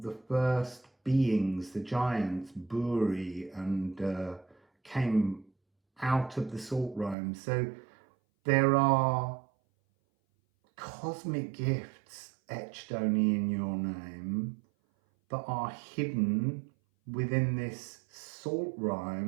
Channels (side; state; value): left; drops out; at 7.2 s